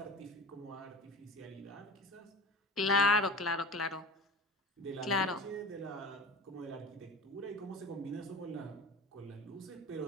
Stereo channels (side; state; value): both; normal; correlation 0.35